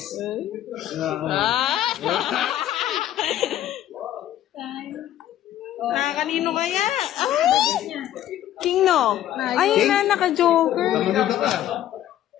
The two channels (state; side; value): quieter; right; 12.1 dB